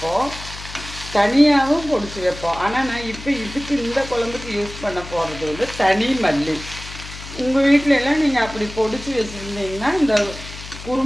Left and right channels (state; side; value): noise; left; hum, 13 dB below the sound